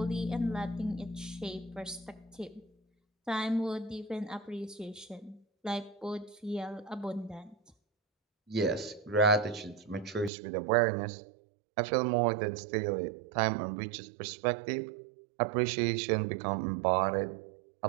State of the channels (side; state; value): left; drops out; at 10.3 s